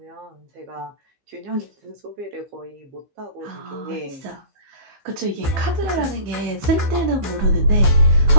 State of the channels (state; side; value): late; left; 15 ms